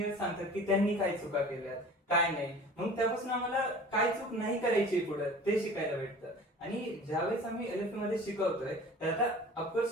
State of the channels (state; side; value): normal; both; correlation 0.42